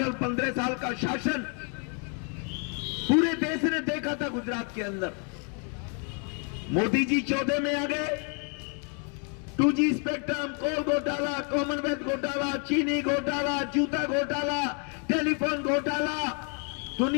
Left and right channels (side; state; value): right; quieter; 39.4 dB